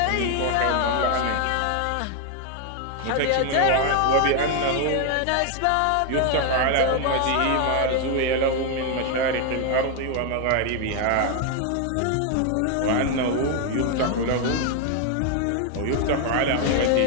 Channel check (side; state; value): both; different; correlation 0.01